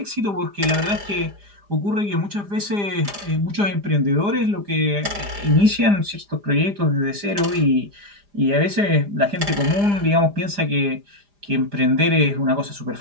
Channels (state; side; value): late; left; 4.9 ms